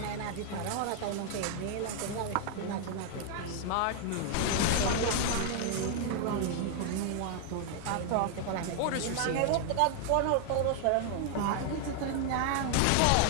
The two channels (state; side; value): different; both; correlation 0.00